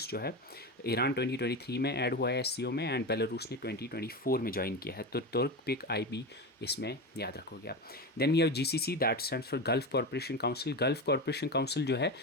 जो है ईरान 2023 में ऐड हुआ है SCO में एंड बेलारूस ने 2024 में ज्वाइन किया है। तो तुर्क पिक IB इसमें याद रखोगे आप। Then we have GCC that stands for gulf corporation council. Gulf corporation council जो है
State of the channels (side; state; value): both; normal; correlation 0.21